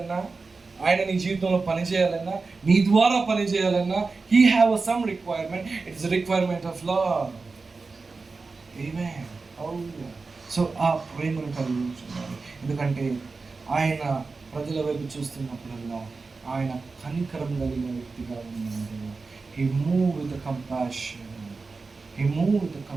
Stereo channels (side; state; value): left; quieter; 4.1 dB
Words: ఆయన నీ జీవితంలో పని చేయాలన్నా, నీ ద్వారా పని చేయాలన్నా, He have some requirement. It's a requirement of love. Amen. Hallelujah. So ఆ ప్రేమను కలిగి ఉంటున్నాడు. ఎందుకంటే ఆయన ప్రజల వైపు చూస్తున్నప్పుడల్లా ఆయన కనికరం కలిగిన వ్యక్తిగా ఉన్నాడు. He moved with the compassion. He moved with the